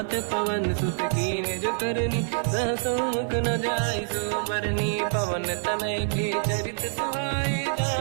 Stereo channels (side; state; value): left; silent; 56 dB below the other